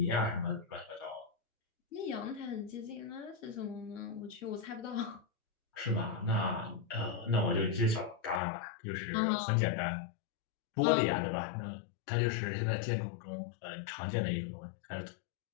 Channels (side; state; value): right; drops out; at 8.4 s